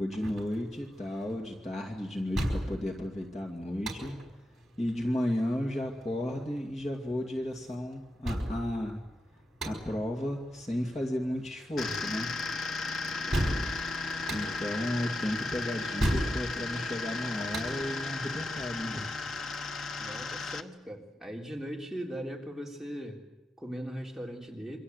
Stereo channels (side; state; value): both; normal; correlation 0.89